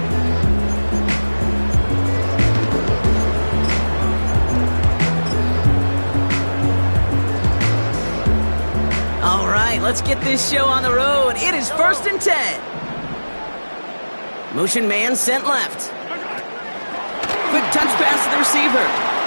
Let's get this show on the road. It is 1st and 10. Motion man sent left. Quick touch pass to the receiver.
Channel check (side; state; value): both; inverted; correlation -1.00